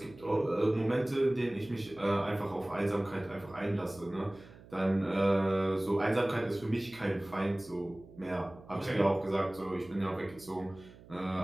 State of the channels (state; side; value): noise; right; hum, 21 dB below the sound